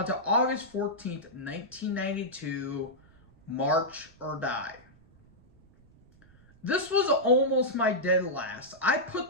to August 14th, 1992, March or Die. This was almost my dead last. I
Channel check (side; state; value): right; noise; rumble, 28 dB below the sound